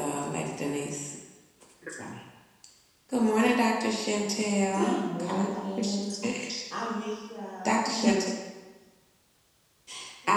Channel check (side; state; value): both; identical; correlation 1.00